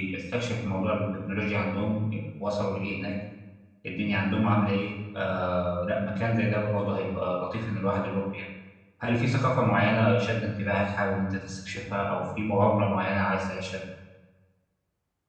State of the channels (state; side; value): identical; both; correlation 1.00